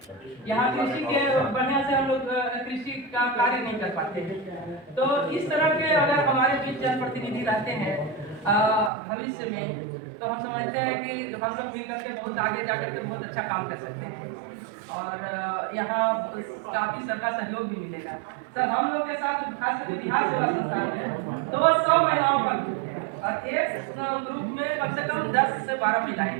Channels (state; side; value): drops out; left; at 8.9 s